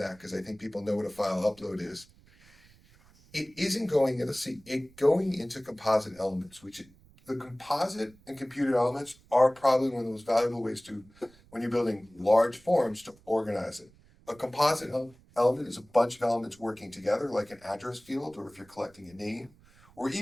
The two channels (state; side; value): noise; right; rumble, 27 dB below the sound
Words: because I think people know what a file upload is. It isn't going, let's see, going into composite elements, the composite and computed elements are probably one of the most valuable ways to, when you're building large forms, to organize it. A composite element is a bunch of elements working together, like an address field, or if you're collecting a name, or